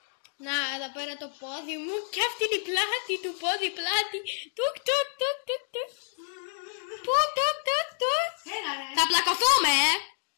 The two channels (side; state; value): right; silent; 59 dB below the other